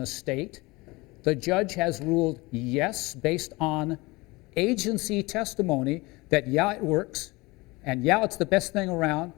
state. The judge has ruled yes, based on agency testimony, that yeah, it works, and yeah, it's the best thing around,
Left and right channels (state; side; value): quieter; right; 23.1 dB